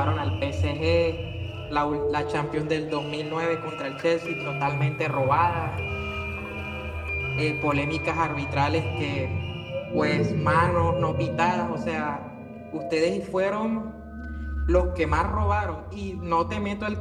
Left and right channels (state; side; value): identical; both; correlation 1.00